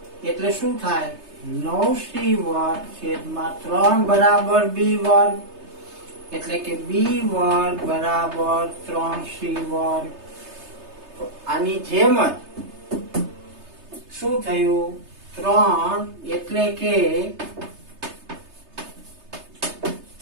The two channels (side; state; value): left; late; 3.3 ms